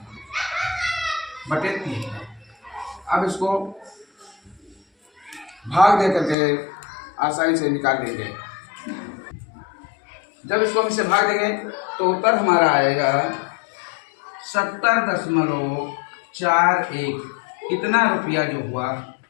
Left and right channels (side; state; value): right; drops out; at 6.4 s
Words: बटे 3। अब इसको भाग दे करके आसानी से निकाल देंगे। जब इसको हम इसे भाग देंगे तो उत्तर हमारा आएगा 70.41। कितना रुपया जो हुआ